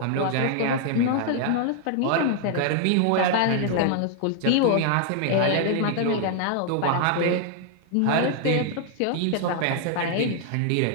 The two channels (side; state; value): both; different; correlation 0.00